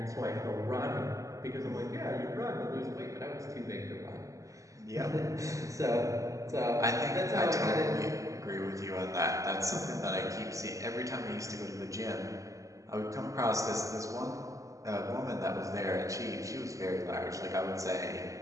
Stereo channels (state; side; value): late; left; 0.16 ms